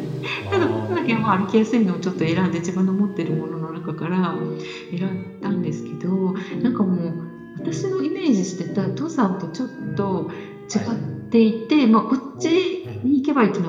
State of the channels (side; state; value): both; identical; correlation 1.00